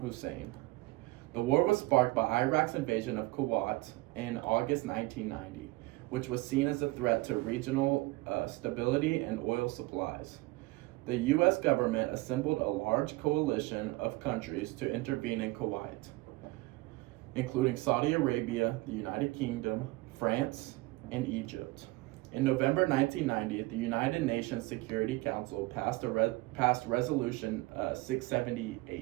The war was sparked by Iraq's invasion of Kuwait in August 1990, which was seen as a threat to regional stability and oil supplies. The U.S. government assembled a large coalition of countries to intervene in Kuwait, including Saudi Arabia, the United Kingdom, France, and Egypt. In November 1990, the United Nations Security Council passed Resolution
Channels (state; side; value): quieter; left; 21.2 dB